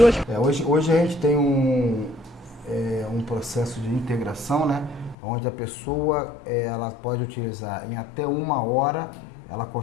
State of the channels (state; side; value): drops out; right; at 5.2 s